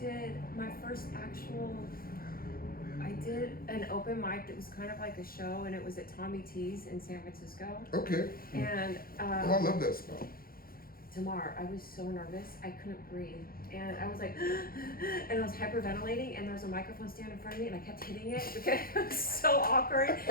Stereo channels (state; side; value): late; right; 0.43 ms